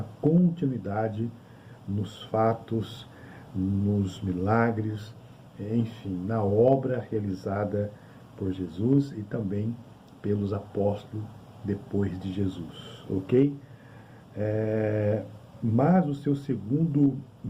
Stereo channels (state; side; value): identical; both; correlation 1.00